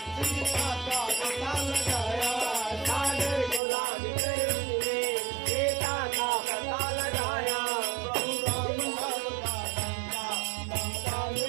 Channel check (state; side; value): drops out; left; at 3.6 s